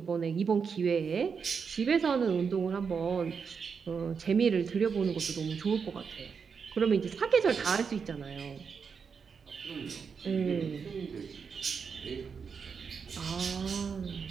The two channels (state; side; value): quieter; left; 6.0 dB